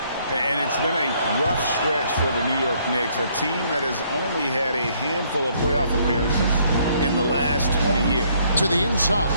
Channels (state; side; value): inverted; both; correlation -0.67